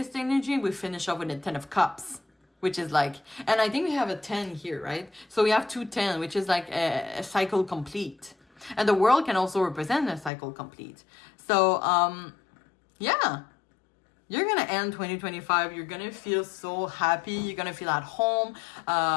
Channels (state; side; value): drops out; right; at 10.3 s